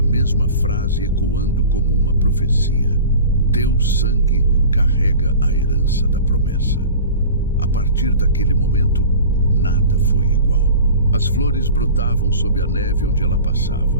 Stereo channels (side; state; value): both; inverted; correlation -0.39